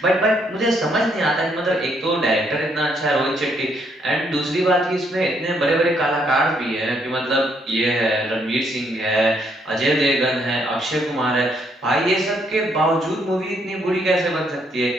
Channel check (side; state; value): both; normal; correlation 0.72